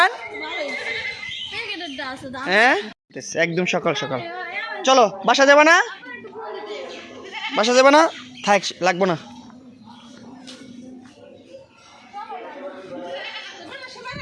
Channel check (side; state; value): both; identical; correlation 1.00